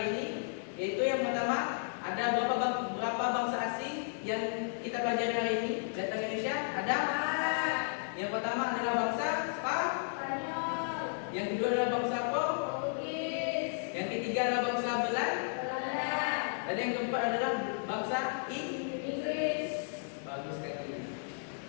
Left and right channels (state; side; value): silent; right; digital silence